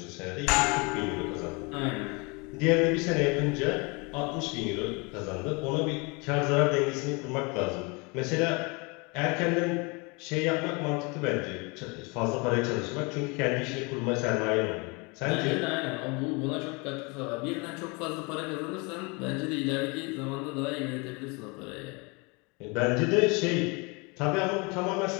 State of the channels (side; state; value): right; quieter; 29.3 dB